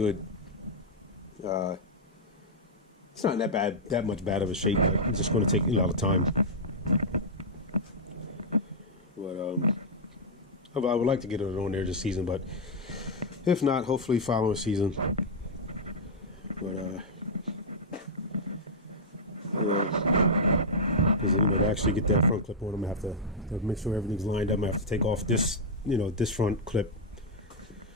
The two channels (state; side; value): normal; both; correlation -0.05